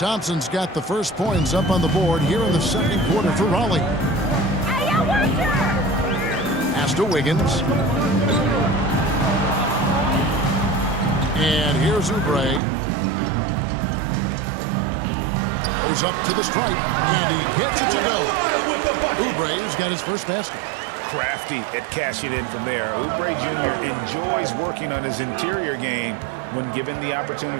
got the first points up on the board here in the second quarter for Raleigh. Pass to Wiggins. And here's Oubre. Goes up to the stripe, and he gets it to go. Oubre's got his first basket. Crafty at cashing in from there. Oubre Jr. enjoys working on his interior game when given the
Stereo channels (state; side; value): drops out; left; at 12.6 s